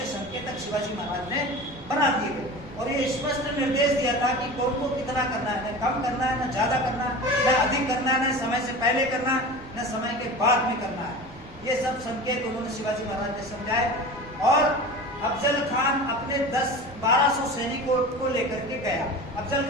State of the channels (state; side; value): noise; right; rumble, 22 dB below the sound